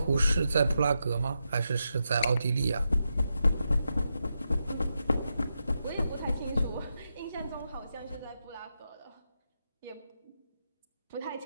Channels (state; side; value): inverted; both; correlation -0.86